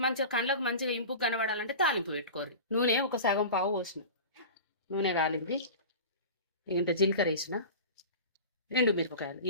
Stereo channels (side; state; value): both; inverted; correlation -0.33